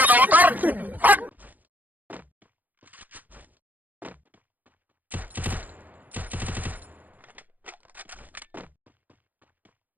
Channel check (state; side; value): late; left; 0.082 ms